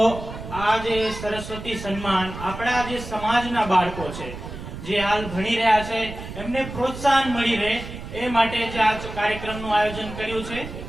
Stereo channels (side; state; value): right; noise; rumble, 10 dB below the sound